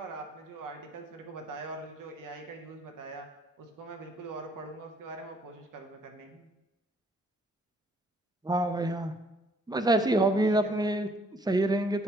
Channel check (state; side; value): normal; both; correlation 0.64